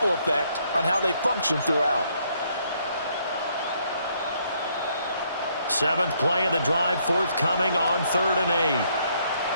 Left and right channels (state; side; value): inverted; both; correlation -0.70